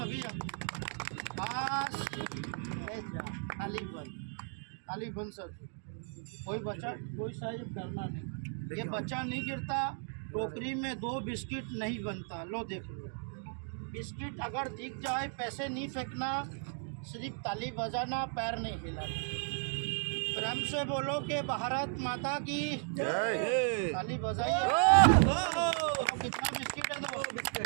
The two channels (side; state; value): left; silent; 54 dB below the other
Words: बस ले जा, ताली बंद। खाली बंद सर। कोई बच्चा कोई साहिब करना नहीं, ये बच्चा नहीं गिरता। टोकरी में 2 बिस्किट नहीं बनता। लो देख लो, बिस्किट अगर दिख जाए पैसे नहीं फेंकना, सिर्फ ताली बजाना, पैर नहीं हिलाना। प्रेम से बोलो कि भारत माता की जय। ताली बजाइए। तो कितना बिस्किट है?